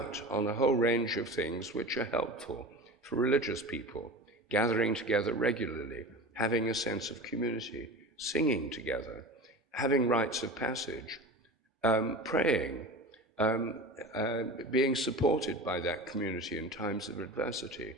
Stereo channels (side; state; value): both; normal; correlation 0.32